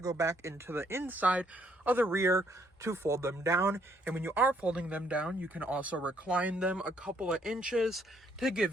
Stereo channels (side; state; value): both; normal; correlation 0.69